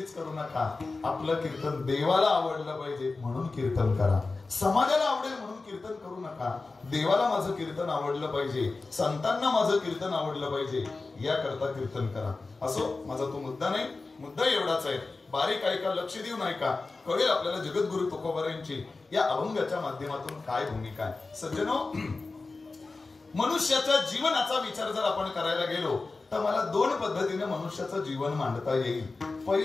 करू नका, आपलं कीर्तन देवाला आवडलं पाहिजे म्हणून कीर्तन करा. समाजाला आवडेल म्हणून कीर्तन करू नका, देवाला माझं कीर्तन आवडलं पाहिजे, संतांना माझं कीर्तन आवडलं पाहिजे याकरता कीर्तन करा. असो, माझा तो मुद्दा नाही. मुद्दा एवढाच आहे, बारीक ऐका, लक्ष देऊन ऐका, कळेल आपल्याला जगद्गुरु तुकोबारायांची या अभंगाच्या माध्यमातून काय भूमिका आहे. सज्जनो, मनुष्याच्या जीवनाचा विचार जर आपण करायला गेलो तर मला दोन पद्धतीने मनुष्याचं जीवन मांडता येईल.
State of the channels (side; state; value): right; quieter; 3.7 dB